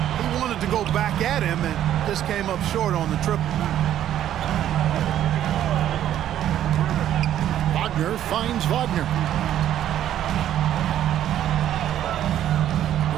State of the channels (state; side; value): quieter; left; 11.4 dB